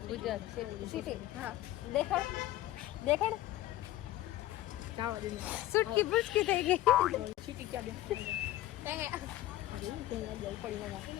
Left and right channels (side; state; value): right; quieter; 15.2 dB